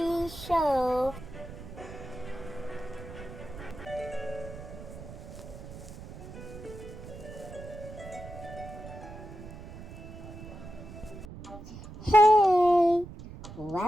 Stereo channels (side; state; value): right; noise; rumble, 13 dB below the sound